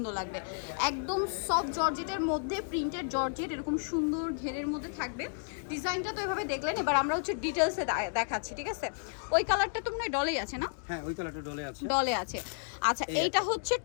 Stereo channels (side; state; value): right; silent; digital silence